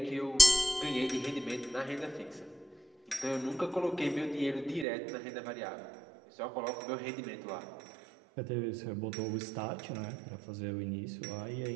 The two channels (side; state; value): left; drops out; at 4.9 s